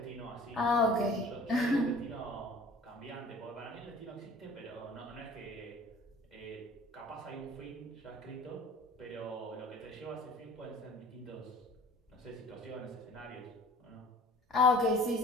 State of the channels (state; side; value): normal; both; correlation 0.46